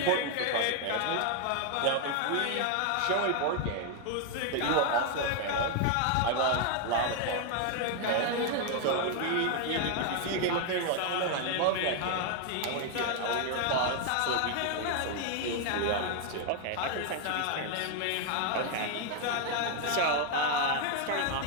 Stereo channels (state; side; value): different; both; correlation 0.00